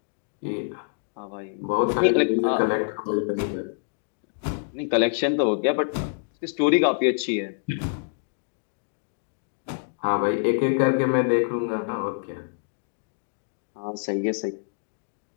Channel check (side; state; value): right; silent; digital silence